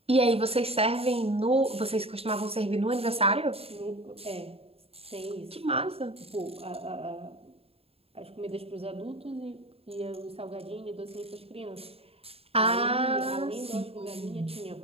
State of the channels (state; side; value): late; left; 0.28 ms